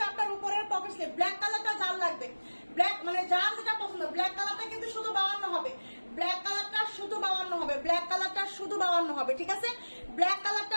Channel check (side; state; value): both; inverted; correlation -1.00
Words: আপনার উপরের পকেট স্লিপ। ব্ল্যাক কালারটা যার লাগবে, ব্ল্যাক মানে যার যেটা পছন্দ, ব্ল্যাক কালারটা কিন্তু শুধু 52 হবে, ব্ল্যাক কালারটা শুধু 52 হবে, ব্ল্যাক কালারটা শুধু 52 হবে, ঠিক আছে, ব্ল্যাক